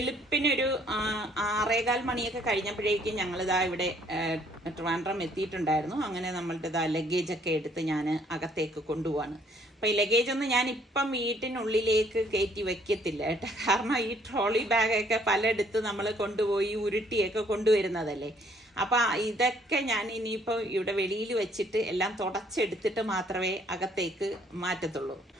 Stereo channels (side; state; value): both; normal; correlation 0.64